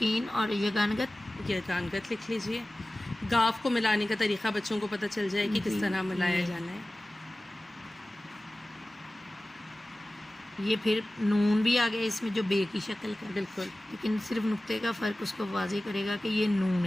और यगानगत, ये गानगत लिख लीजिए। गाफ को मिलाने का तरीका बच्चों को पता चल जाए कि किस तरह मिलाया जाना है। ये फिर नून भी आ गया इसमें जो बे की शक्ल का, बिल्कुल, लेकिन सिर्फ नुक्ते का फ़र्क उसको वाज़ेह करेगा कि ये नून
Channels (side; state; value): both; normal; correlation 0.97